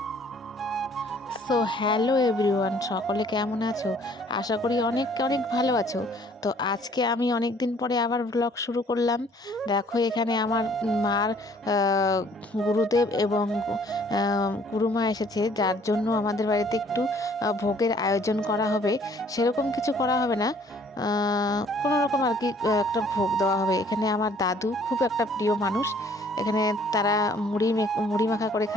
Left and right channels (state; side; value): normal; both; correlation 0.58